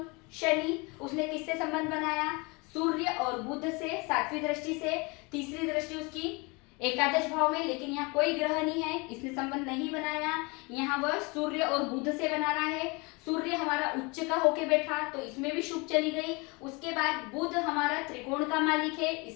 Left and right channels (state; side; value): quieter; right; 27.9 dB